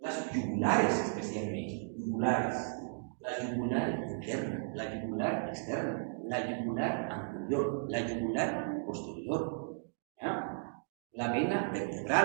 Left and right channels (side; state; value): left; silent; digital silence